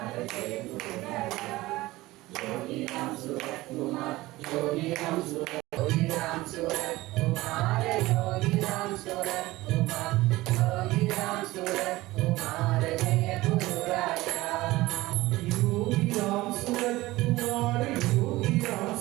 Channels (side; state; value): left; quieter; 18.7 dB